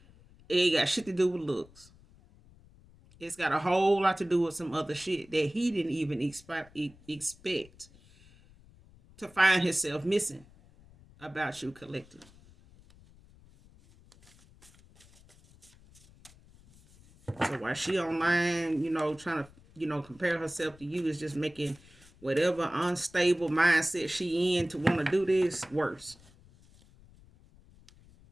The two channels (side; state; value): left; noise; rumble, 25 dB below the sound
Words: it ain't got shit to do with looks. It's got a whole lot to do with some other shit that he didn't even expect to find himself missing about you, collective. So while she online, trying to, compare herself to you, is just making whatever unstable mindset she in to want to do this worse.